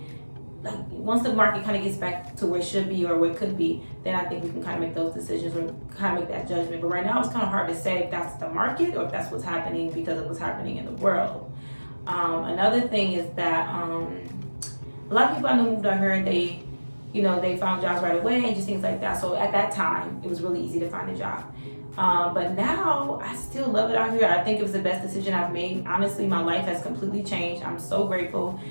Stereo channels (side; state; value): both; inverted; correlation -1.00